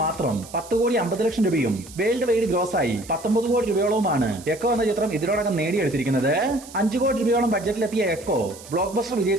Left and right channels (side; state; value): right; noise; hiss, 18 dB below the sound